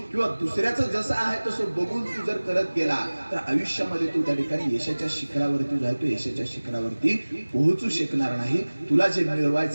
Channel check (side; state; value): both; inverted; correlation -1.00